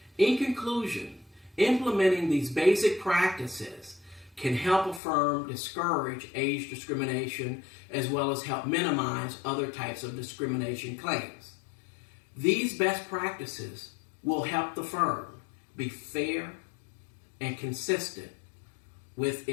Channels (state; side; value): drops out; right; at 5.0 s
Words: In conclusion, implementing these basic practices can help a firm discourage age discrimination as well as help minimize other types of discrimination claims. These best practices will help the firm be fair and consistent with